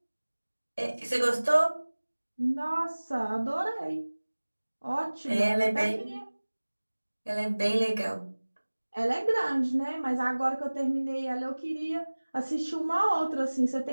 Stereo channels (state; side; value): inverted; both; correlation -1.00